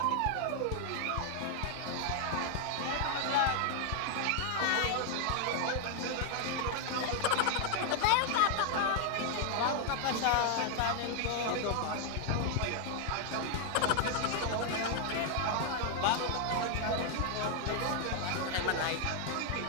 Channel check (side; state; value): both; different; correlation 0.00